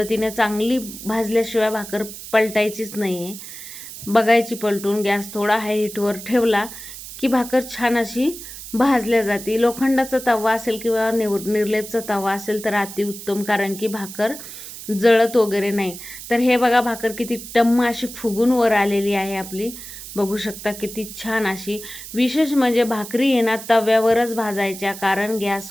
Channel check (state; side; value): noise; right; hiss, 12 dB below the sound